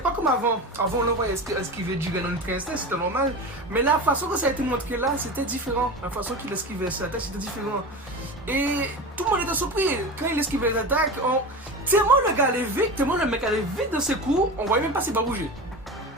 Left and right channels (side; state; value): both; normal; correlation 0.28